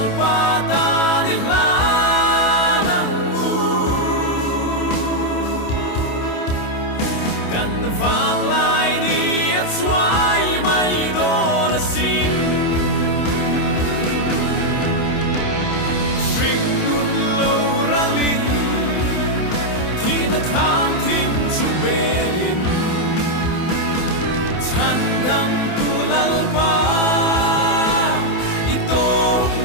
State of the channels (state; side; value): late; right; 28 ms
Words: ta ni la nang u kan vang lai ni at suai mai don sin na khang thim chu belin chan dam tu lalpa ito